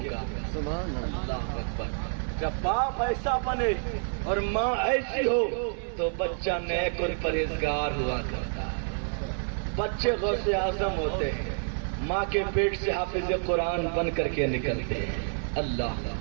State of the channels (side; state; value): left; silent; digital silence